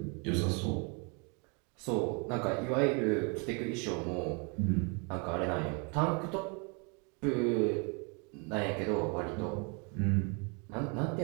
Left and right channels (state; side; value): quieter; left; 34.3 dB